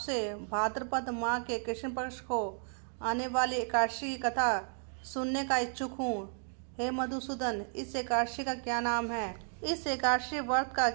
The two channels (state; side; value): silent; left; 56 dB below the other